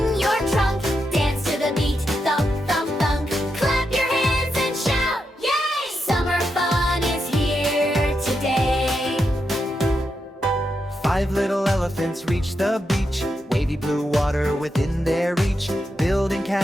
your trunk. Dance to the beat, thump, thump, thump. Clap your hands and shout, yay! Summer fun is here today. 5 little elephants reach the beach, wavy blue water within their reach, building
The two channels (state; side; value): normal; both; correlation 0.85